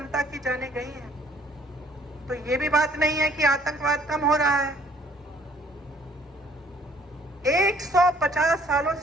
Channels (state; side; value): normal; both; correlation 0.59